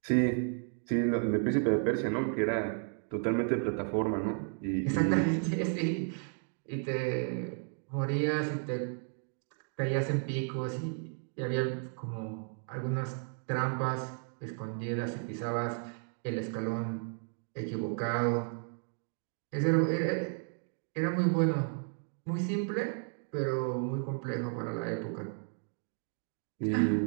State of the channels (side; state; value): left; silent; 55 dB below the other